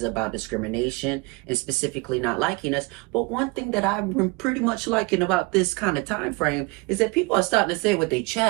about discrimination and specifically not liking us. But one thing that I've been pretty much liking about this kind of time frame is that people are starting to say it with their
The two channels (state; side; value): quieter; left; 27.0 dB